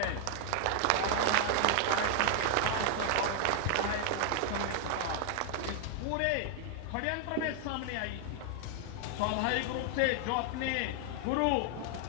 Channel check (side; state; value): both; different; correlation 0.00